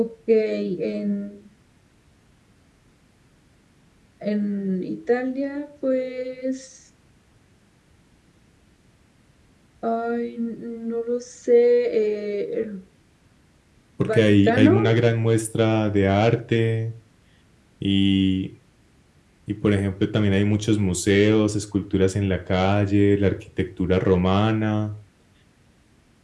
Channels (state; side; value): identical; both; correlation 1.00